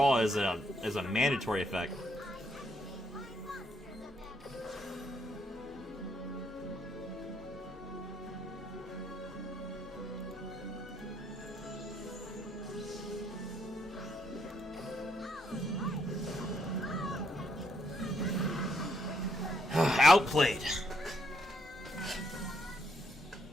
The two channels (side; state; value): both; normal; correlation 0.74